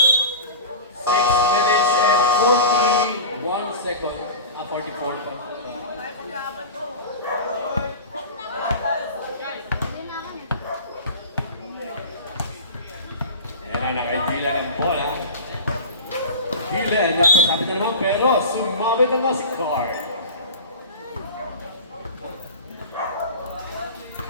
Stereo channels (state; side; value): inverted; both; correlation -0.31